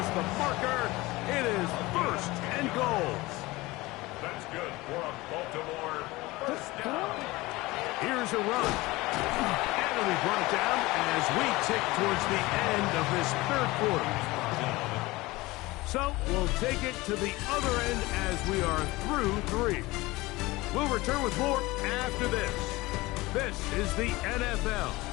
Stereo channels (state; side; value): quieter; right; 20.7 dB